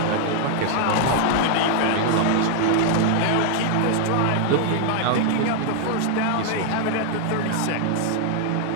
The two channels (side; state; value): both; different; correlation 0.00